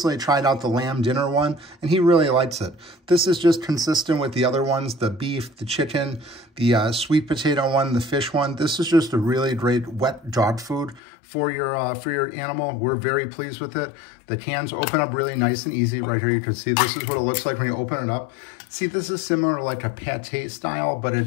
tried out the Lamb Dinner one, and he really likes it. This is just consistent with the other ones, the beef, the chicken, the sweet potato one, the fish one. This is just a really great wet dog food for your animal. We're very pleased with it. The cans open up really nice and easy. Right here, you can see this is what it looks like when you open it up. See, this is similar to like a pate style, but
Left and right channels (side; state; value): right; drops out; at 11.0 s